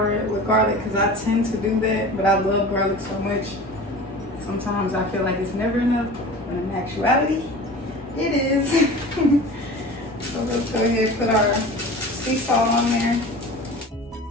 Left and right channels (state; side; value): normal; both; correlation 0.38